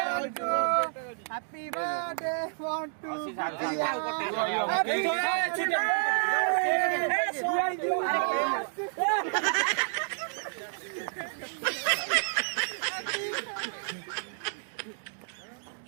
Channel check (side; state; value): left; silent; digital silence